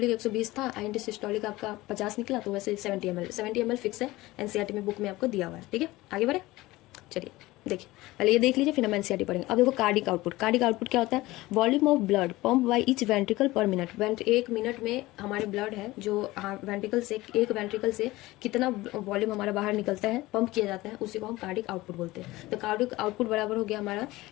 120 था, इन सिस्टोलिक आपका 50 निकला, तो वैसे 70 ml फिक्स है, एनसीईआरटी में बुक में आपको दिया हुआ है, ठीक है। आगे बढ़े, चलिए देखिए, पहले ये देख लीजिए फिर हम एनसीईआरटी पढ़ेंगे। अब देखो कार्डिक आउटपुट क्या होता है, volume of blood pump by each ventricle पर मिनट। एक मिनट में हमारे ब्लड है जो वेंट्रिकल से, एक वेंट्रिकल से कितना वॉल्यूम हमारा बाहर निकलता है, पंप किया जाता है, उसी को हम कार्डिक आउटपुट बोलते हैं। तो कार्डिक आउटपुट बराबर हो गया हमारा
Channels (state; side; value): quieter; right; 19.0 dB